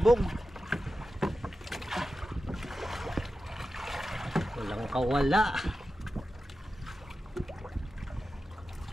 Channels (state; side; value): normal; both; correlation 0.93